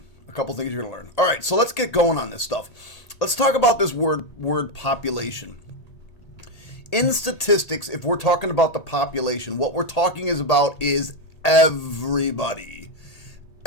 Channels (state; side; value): late; right; 1.8 ms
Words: A couple things you're going to learn. Alright, so let's get going on this stuff. Let's talk about this word population. In statistics, if we're talking about the population, what we're talking about is everybody.